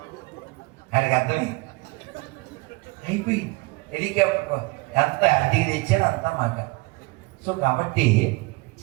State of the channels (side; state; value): left; quieter; 25.1 dB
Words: ఆయనకి అర్థమే అయిపోయింది. హెలికాప్టర్ ఎంత అడిగి తెచ్చాను అంతా మాట. సో కాబట్టి